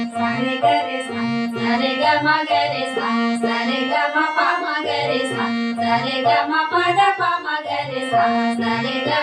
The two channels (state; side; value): identical; both; correlation 1.00